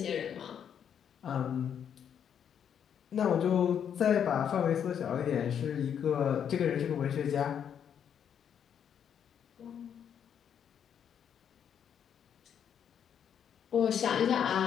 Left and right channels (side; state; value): right; quieter; 8.5 dB